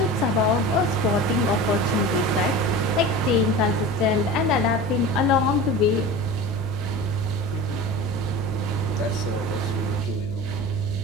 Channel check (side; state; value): left; noise; hum, 15 dB below the sound